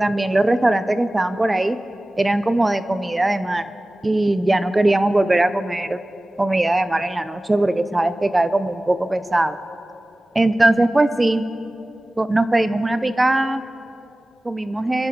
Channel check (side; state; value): both; normal; correlation 0.97